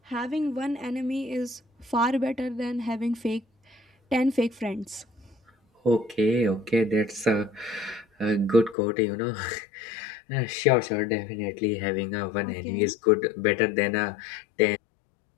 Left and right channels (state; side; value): drops out; right; at 8.8 s